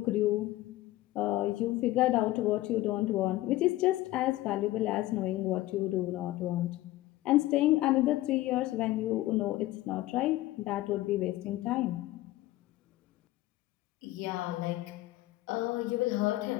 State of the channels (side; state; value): right; quieter; 16.8 dB